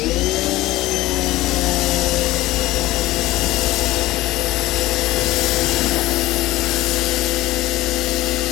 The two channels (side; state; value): right; quieter; 17.3 dB